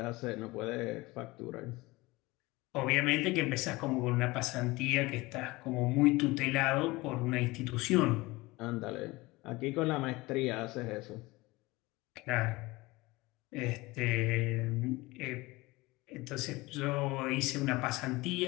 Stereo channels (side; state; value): right; quieter; 21.5 dB